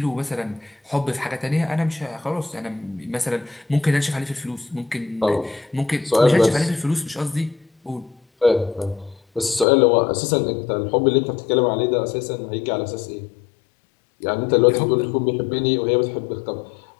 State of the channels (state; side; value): drops out; right; at 9.7 s